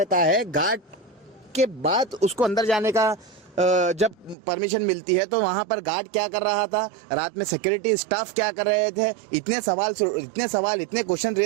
है, गार्ड के बाद उसको अंदर जाने का जब परमिशन मिलती है तो वहाँ पर गार्ड क्या कर रहा था, रात में सिक्योरिटी स्टाफ क्या कर रहे थे, इतने सवाल इतने क्वेश्चन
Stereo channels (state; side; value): drops out; left; at 4.4 s